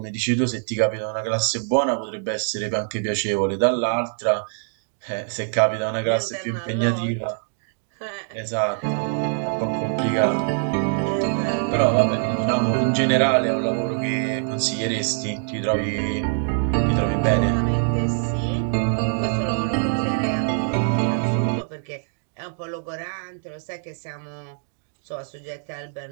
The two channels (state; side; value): silent; left; 63 dB below the other